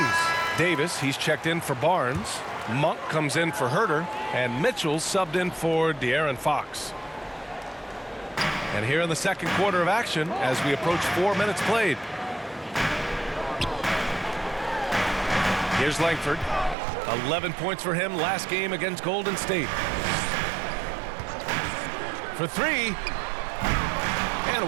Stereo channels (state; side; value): drops out; left; at 16.8 s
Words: Davis, he's checked in for Barnes. Monk comes in for Huerter. And Mitchell subbed in for De'Aaron Fox. And here in the second quarter of action as we approach 4 minutes played. Here's Langford. 11 points for him last game against Golden State. For 3.